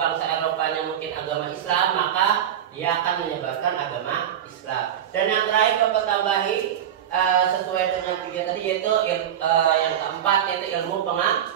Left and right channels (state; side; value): quieter; left; 10.1 dB